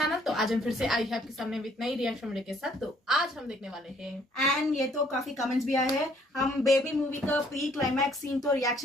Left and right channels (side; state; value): both; normal; correlation 0.63